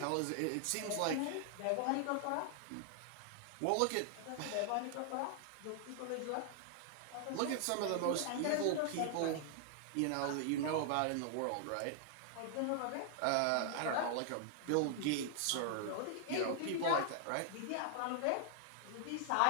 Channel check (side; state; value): both; different; correlation -0.01